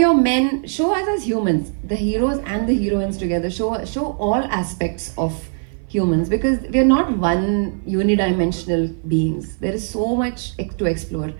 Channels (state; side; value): silent; left; 57 dB below the other